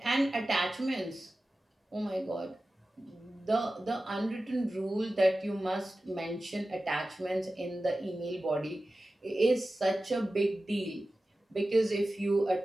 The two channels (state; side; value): normal; both; correlation 0.95